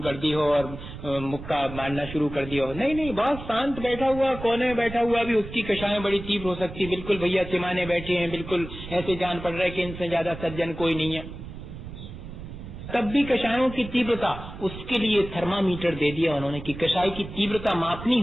कर दी हो और मुक्का मारना शुरू कर दिया हो। नहीं, बहुत शांत बैठा हुआ, कोने में बैठा हुआ भी उसकी कषायें बड़ी तीव्र हो सकती। बिल्कुल भैया चिमाने बैठे हैं, बिल्कुल ऐसे जान पड़ रहा है कि इनसे ज्यादा सज्जन कोई नहीं है, तब भी कषायों की तीव्रता, उसके लिए थर्मामीटर दे दिया उन्होंने कि कषाय की तीव्रता मापनी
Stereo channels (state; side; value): noise; right; rumble, 12 dB below the sound